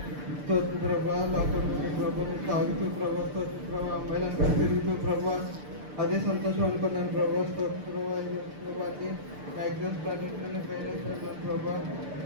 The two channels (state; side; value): late; left; 6.8 ms